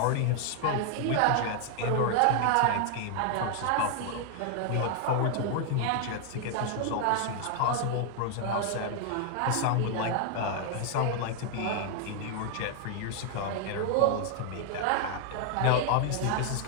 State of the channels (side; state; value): both; different; correlation 0.00